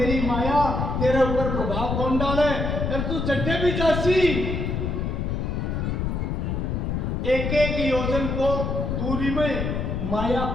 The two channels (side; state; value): left; noise; rumble, 1 dB below the sound